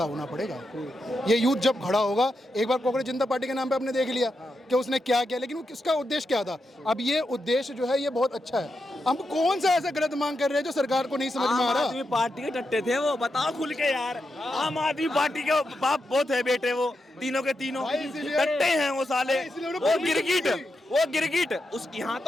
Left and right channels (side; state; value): both; normal; correlation 0.86